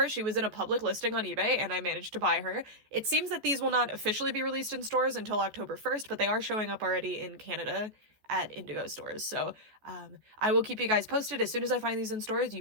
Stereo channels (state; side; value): late; left; 14 ms